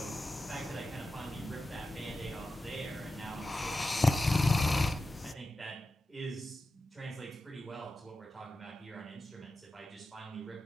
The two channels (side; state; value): both; normal; correlation 0.92